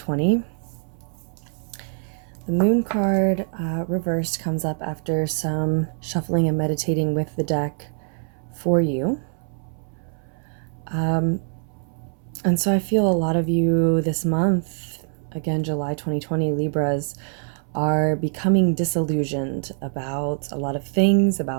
The moon card reversed comes up after some shuffling and meditating with the deck for you. And so I feel a lot of you this month, again July 2020, Libras, are becoming disillusioned about a lot of things,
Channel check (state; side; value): silent; left; 63 dB below the other